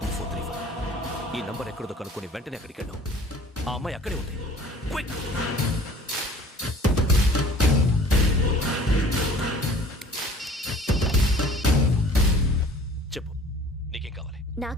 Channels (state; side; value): normal; both; correlation 0.49